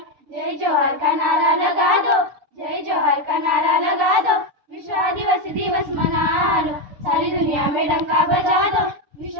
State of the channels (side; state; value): left; late; 6.9 ms